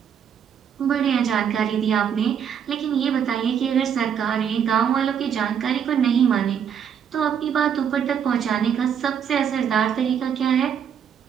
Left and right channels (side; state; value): left; quieter; 8.1 dB